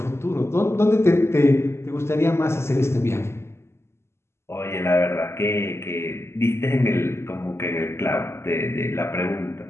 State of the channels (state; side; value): late; right; 0.13 ms